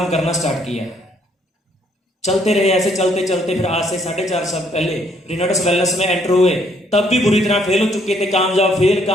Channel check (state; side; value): normal; both; correlation 0.67